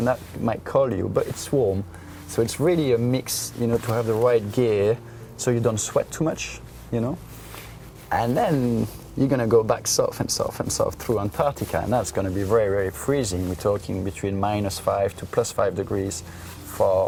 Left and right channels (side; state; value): both; identical; correlation 1.00